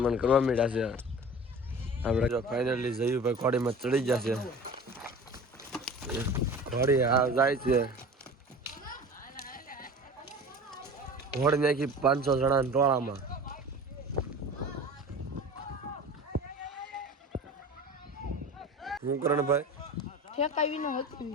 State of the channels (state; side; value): normal; both; correlation 0.39